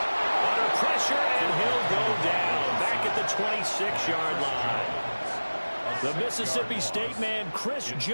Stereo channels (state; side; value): inverted; both; correlation -1.00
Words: Under pressure, and he'll go down. Back at the 26-yard line. The Mississippi State man, Chris